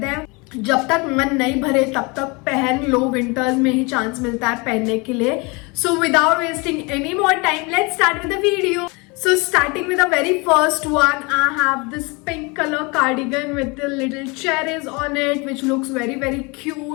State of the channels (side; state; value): right; quieter; 28.1 dB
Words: जब तक मन नहीं भरे तब तक पहन लो, winters में ही chance मिलता है पहनने के लिए. So without wasting any more time, let's start with the video. So starting with the very first one, I have this pink color cardigan with the little cherries on it, which looks very